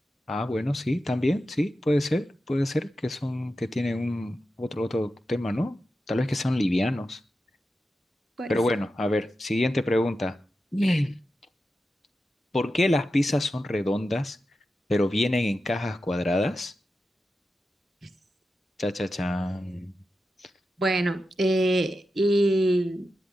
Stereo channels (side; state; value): both; normal; correlation 0.91